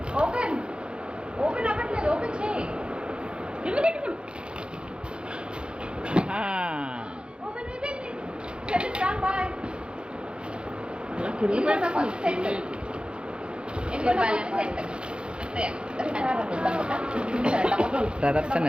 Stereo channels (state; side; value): late; left; 0.054 ms